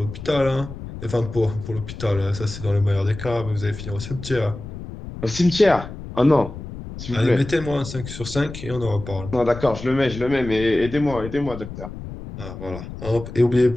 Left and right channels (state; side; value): noise; left; rumble, 11 dB below the sound